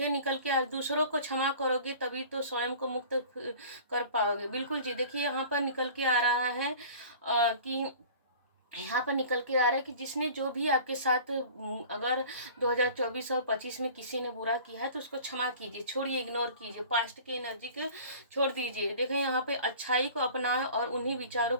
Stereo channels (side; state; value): both; inverted; correlation -0.44